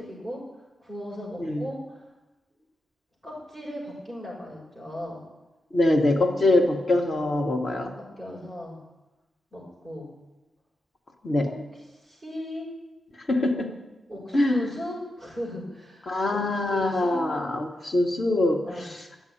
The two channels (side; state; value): both; normal; correlation 0.87